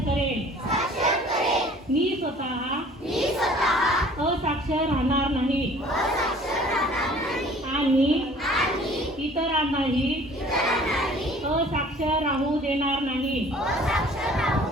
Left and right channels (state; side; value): normal; both; correlation 0.51